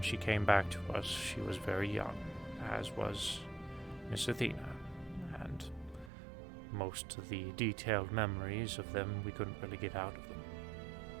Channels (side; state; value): left; drops out; at 6.1 s